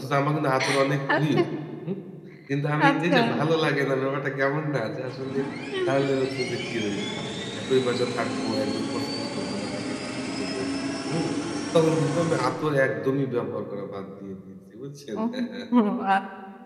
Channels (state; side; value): identical; both; correlation 1.00